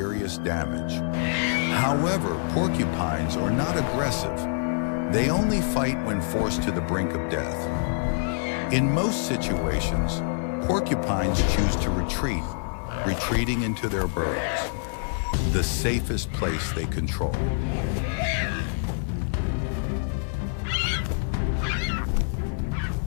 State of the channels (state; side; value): silent; right; digital silence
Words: damage. However, porcupines are not aggressive. They only fight when forced to the brink of death. In most situations, porcupines choose to retreat, retreating into their burrows, the safest place they control.